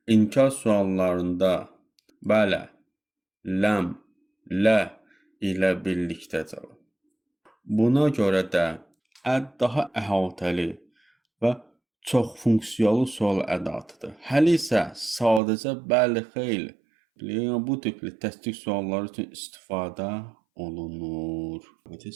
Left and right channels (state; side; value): drops out; left; at 15.4 s